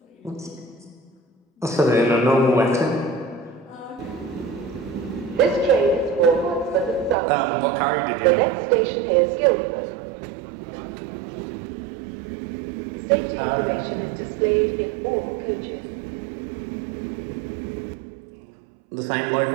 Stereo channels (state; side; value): drops out; left; at 7.2 s